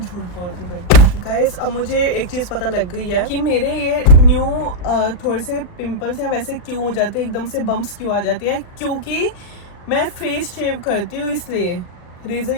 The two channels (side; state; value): right; late; 39 ms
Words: बोलती फिर। गाइस अब मुझे एक चीज पता लग गई है कि मेरे ये न्यू थोड़े से पिंपल्स हैं वैसे क्यों हो जाते हैं, एकदम से बम्प्स क्यों आ जाती है, क्योंकि मैं फेस शेव करती हूँ, इसलिए रेजर